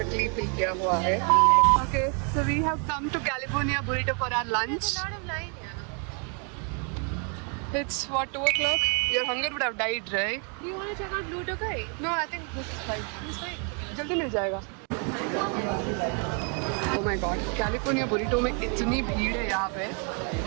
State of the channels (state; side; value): quieter; left; 38.4 dB